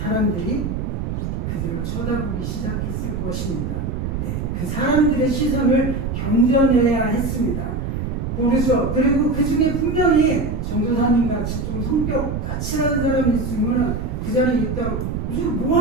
그들을 쳐다보기 시작했을 것입니다. 그 사람들의 시선을 견뎌내야 했습니다. 모르죠. 그리고 그 중에 분명히 전도사님 같이 좀 성격 까칠한 사람이 있으면 그 자리에 있다가 무슨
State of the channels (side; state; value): right; noise; rumble, 3 dB below the sound